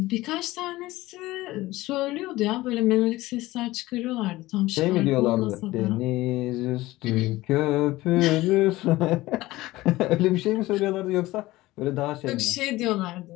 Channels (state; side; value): quieter; right; 18.2 dB